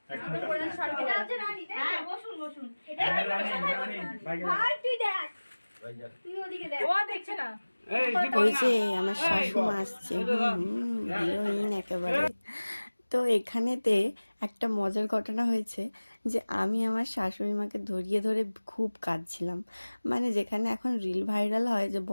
এটা আছে রানী। হ্যাঁ বসুন এটা রানী ভাই তুই দেখ, তুই ওদিকে দেখ। ও দেখছে না। ওই যে আমার শাশুমা আসছে, হিরোইন একেবারে। তো এখানেতে একটা মজার ঘটনা হয়েছে যে আমি আমার শাশুড়ি মাকে ধরিয়ে ধরে খুব কাঁদছিলাম। মানে যেখানে এখন রিল ভাইরাল হয় যে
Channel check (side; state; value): both; inverted; correlation -1.00